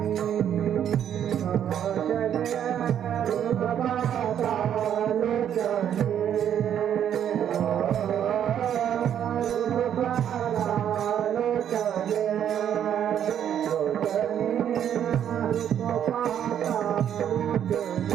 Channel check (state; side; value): quieter; left; 9.6 dB